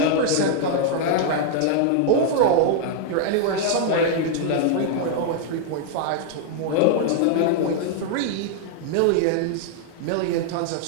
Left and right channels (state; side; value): different; both; correlation 0.00